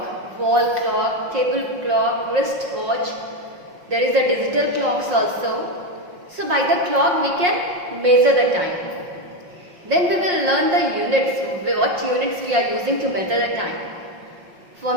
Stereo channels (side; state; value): left; late; 5.6 ms